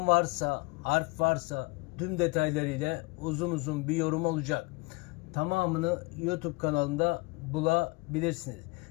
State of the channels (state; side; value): quieter; right; 26.4 dB